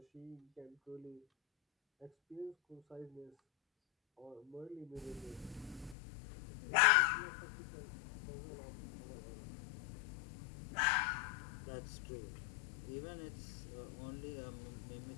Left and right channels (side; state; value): right; drops out; at 6.0 s